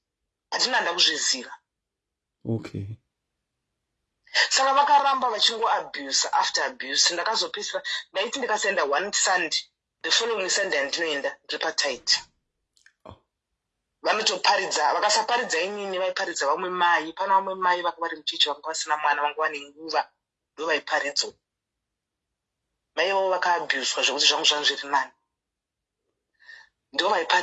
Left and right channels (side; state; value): both; identical; correlation 1.00